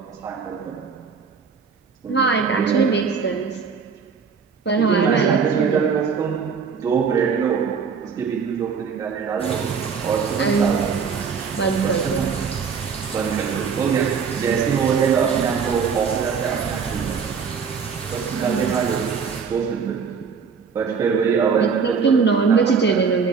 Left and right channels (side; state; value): left; quieter; 6.0 dB